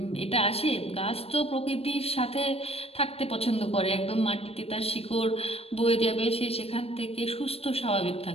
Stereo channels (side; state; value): right; late; 0.28 ms